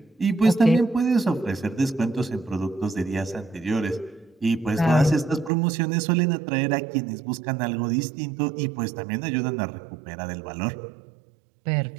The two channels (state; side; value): drops out; left; at 5.5 s